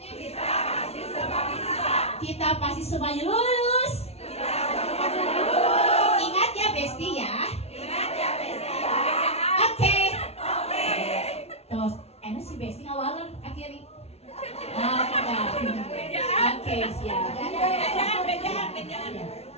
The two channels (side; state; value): right; late; 0.30 ms